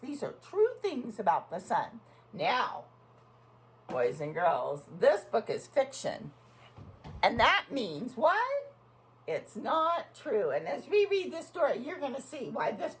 are true things about the sun. Now, boys and girls, this book is fiction. And that means what? It's not true. And as we read this story, you're going to see why this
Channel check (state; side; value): identical; both; correlation 1.00